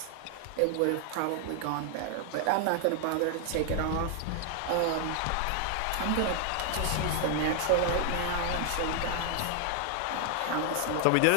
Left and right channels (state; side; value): different; both; correlation 0.00